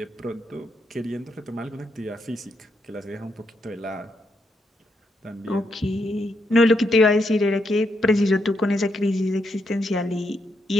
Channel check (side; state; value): both; normal; correlation 0.79